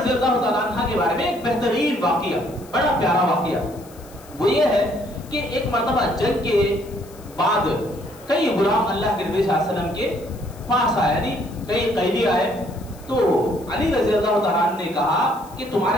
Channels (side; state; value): left; noise; hiss, 23 dB below the sound